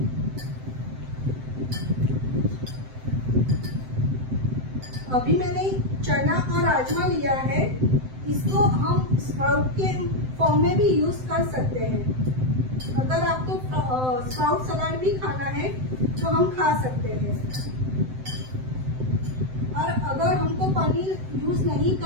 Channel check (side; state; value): left; late; 7.8 ms